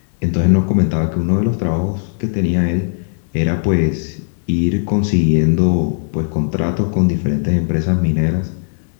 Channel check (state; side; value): silent; right; 68 dB below the other